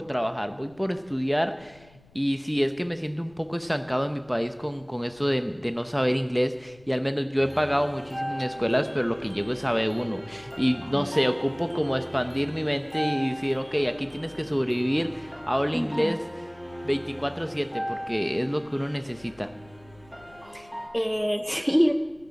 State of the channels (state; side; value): noise; left; rumble, 27 dB below the sound